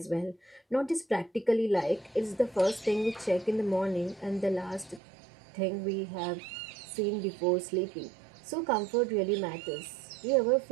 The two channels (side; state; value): left; drops out; at 5.0 s